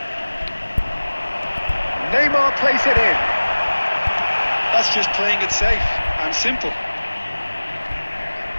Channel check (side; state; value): both; inverted; correlation -1.00